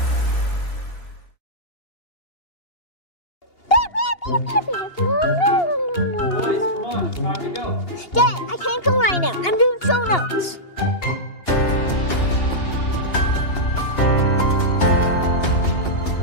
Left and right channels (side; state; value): right; late; 2.8 ms